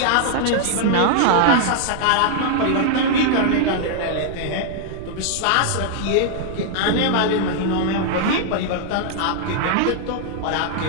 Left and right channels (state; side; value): different; both; correlation -0.01